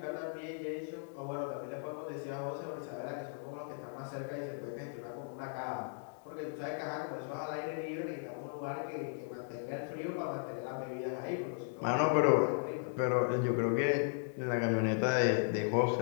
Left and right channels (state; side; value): silent; right; digital silence